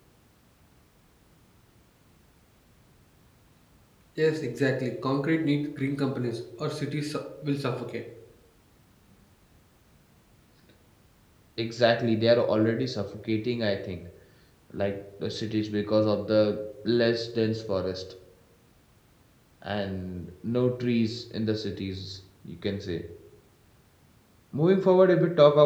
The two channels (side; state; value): both; identical; correlation 1.00